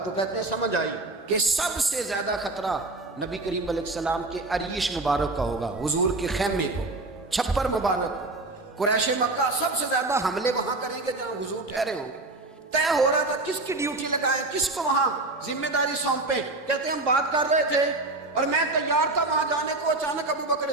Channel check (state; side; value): quieter; left; 3.0 dB